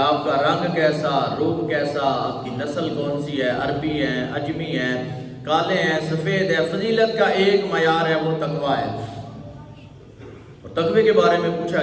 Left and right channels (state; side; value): identical; both; correlation 1.00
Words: آپ کا رنگ کیسا، روپ کیسا، آپ کی نسل کون سی ہے، عربی ہیں، عجمی ہیں، کالے ہیں، سفید ہے، فضیلت کا ایک معیار ہے، وہ تقویٰ ہے۔ اور تقوی کے بارے میں پوچھا